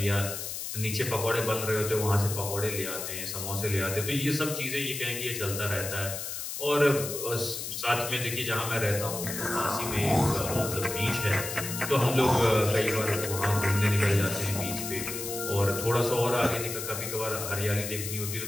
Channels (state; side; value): noise; left; hiss, 6 dB below the sound